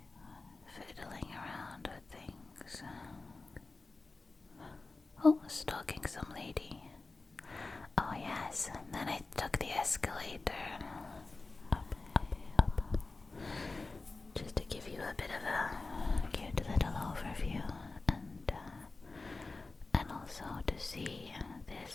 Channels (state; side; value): quieter; right; 3.6 dB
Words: Oh, stalking some lady. Oh yes, and then I took the escalator. Up, up, up. Just to give you a bit of a cute little overview, and also to see this